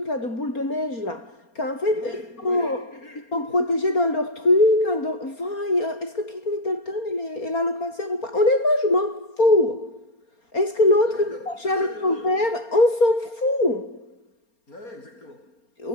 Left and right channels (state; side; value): late; right; 4.3 ms